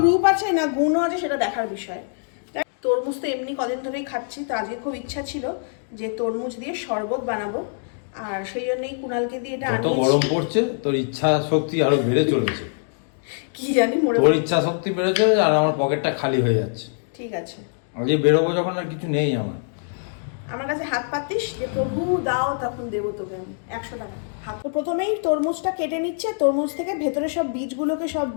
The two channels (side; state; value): right; silent; digital silence